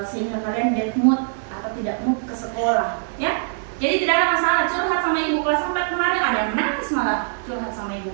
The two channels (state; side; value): silent; left; 64 dB below the other